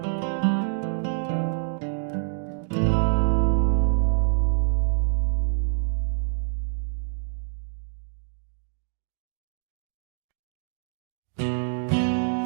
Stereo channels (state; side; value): silent; left; digital silence